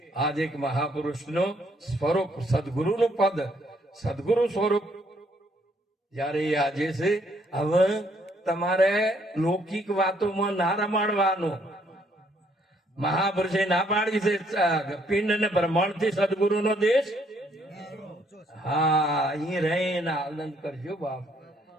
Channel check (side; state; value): both; normal; correlation 0.68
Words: આજ એક મહાપુરુષનો સ્વરૂપ, સદગુરુનું પદ, સદગુરુ સ્વરૂપ જયારે આજે છે. હવે તમારે લૌકિક વાતોમાં ના રમાડવાનું. મહાપુરુષે ના પાડી છે, પિંડ ને બ્રહ્માંડ થી સદગુરુ નો દેશ. હા, અહીં રહીને આનંદ કરજો બાપ